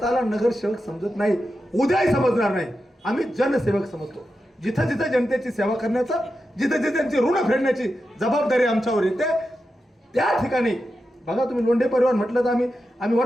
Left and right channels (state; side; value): normal; both; correlation 0.90